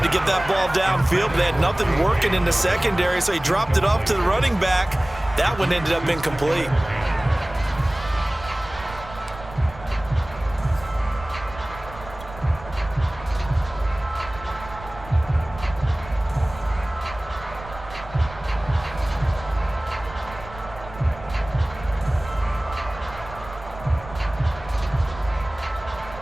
to get that ball downfield, but they had nothing working in the secondary, so he dropped it off to the running back. That one ended up incomplete.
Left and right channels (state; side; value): noise; right; rumble, 15 dB below the sound